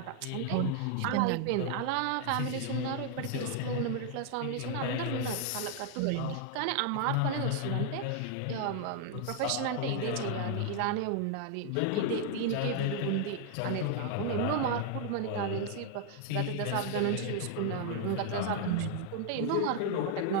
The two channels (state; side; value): different; both; correlation 0.00